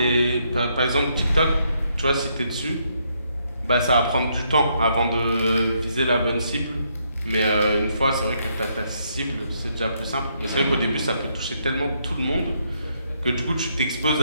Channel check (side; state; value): both; inverted; correlation -0.75